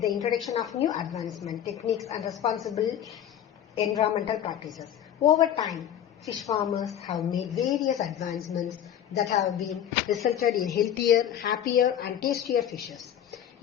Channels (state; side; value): quieter; right; 10.1 dB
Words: the introduction of new advancement techniques and responsible environmental practices. Over time, fish farmers have made various advancements that have been resulted in healthier, happier and tastier fishes.